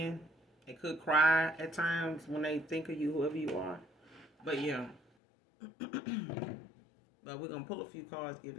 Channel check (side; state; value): right; drops out; at 5.0 s